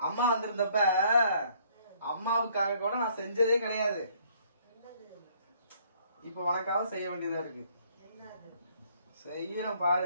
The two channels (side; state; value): both; inverted; correlation -0.63